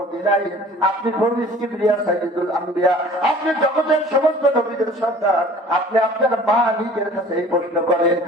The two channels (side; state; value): both; normal; correlation 0.47